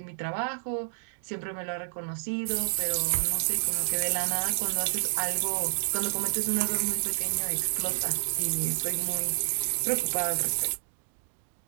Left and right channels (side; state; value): left; silent; digital silence